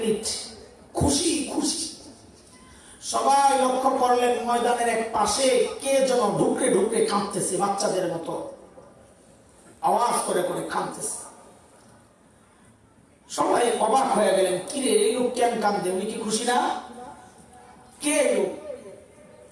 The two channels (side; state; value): both; identical; correlation 1.00